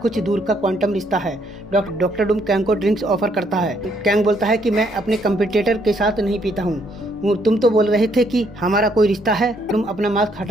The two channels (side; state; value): both; normal; correlation 0.70